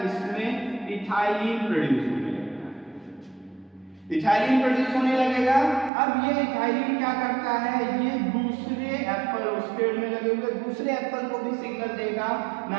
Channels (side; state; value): left; drops out; at 5.9 s